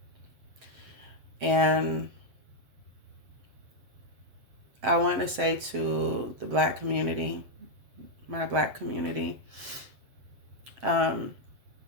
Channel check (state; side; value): late; left; 7.3 ms